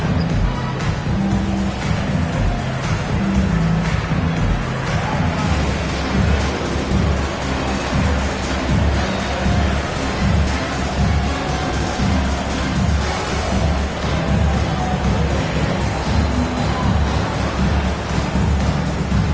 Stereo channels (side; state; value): both; identical; correlation 1.00